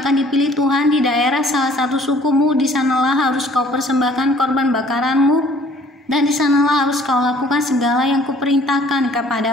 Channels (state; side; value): normal; both; correlation 0.56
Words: dipilih Tuhan di daerah salah satu sukumu, di sanalah harus kau persembahkan korban bakaranmu, dan di sanalah harus kau lakukan segala yang kuperintahkan